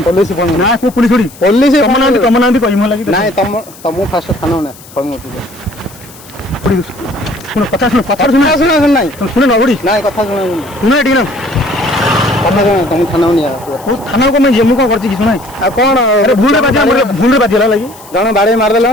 पुलिस ना को पुलिस थोड़ी पुलिस तम ना कहि म लागि नहीं तुम फास्ट थाना ना सुन कथा सुन नहीं सुन न बड़ी नहीं कथा सुन एटी ना तुम थाना नहीं ओ थाना को मैं जेमु को करछि कि सुनाई आ कौन अरे भूल रे बाजिला लागि जण बाड़ी मार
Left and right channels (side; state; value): left; noise; hiss, 21 dB below the sound